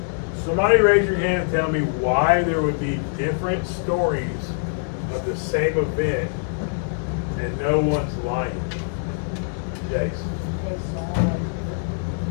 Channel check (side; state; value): right; silent; digital silence